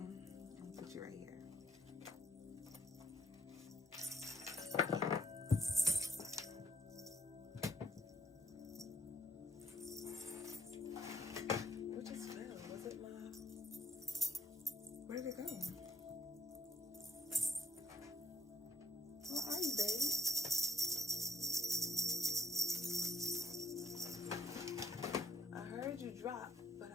I'll put you right here. What just fell? Was it my... Where did it go? Where are you, baby? I heard you drop, but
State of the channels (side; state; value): both; normal; correlation 0.71